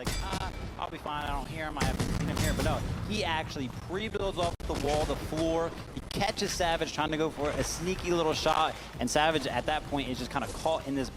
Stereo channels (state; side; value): identical; both; correlation 1.00